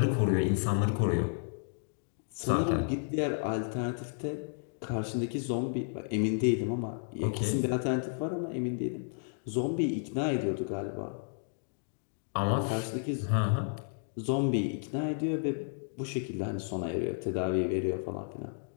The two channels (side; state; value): right; silent; digital silence